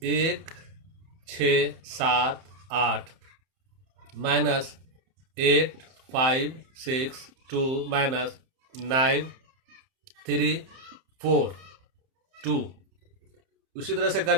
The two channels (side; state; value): left; late; 31 ms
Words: 1 6 7 8 माइनस 8 5 6 2 माइनस 9 3 4 2। उसी तरह से कर